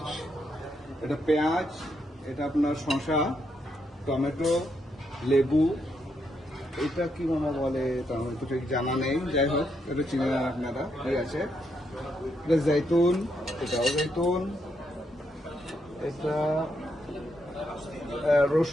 এটা পেঁয়াজ, এটা আপনার শসা, টমেটো, লেবু, এটা কি মামা বলে তা আমার তো ঠিক জানা নেই, যাই হোক এটা চিনে না আপনারা কি আছে। এটা জৈতুন, এটাও জৈতুন, এটা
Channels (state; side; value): normal; both; correlation 0.79